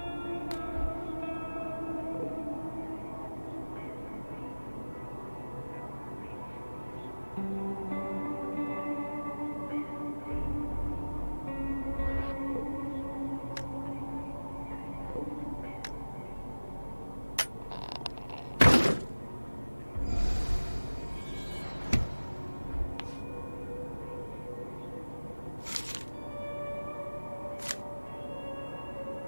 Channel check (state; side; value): inverted; both; correlation -1.00